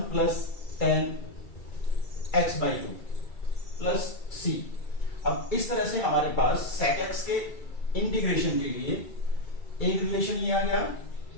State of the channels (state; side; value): late; right; 2.3 ms